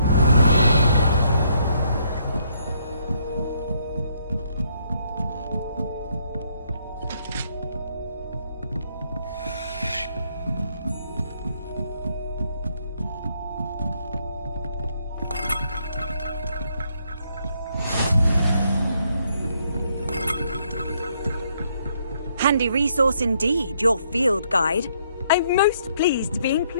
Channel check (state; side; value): inverted; both; correlation -0.71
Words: Handy resource indeed, your field guide. I'm most pleased to be